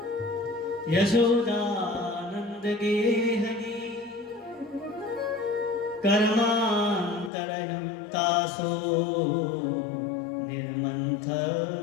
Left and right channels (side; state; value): right; drops out; at 7.3 s